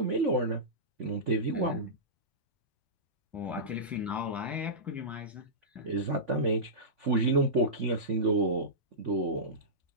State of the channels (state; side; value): normal; both; correlation -0.17